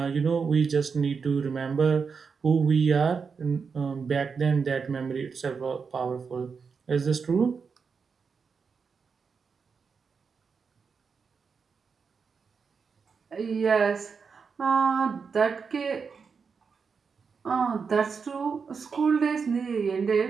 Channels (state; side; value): quieter; left; 5.6 dB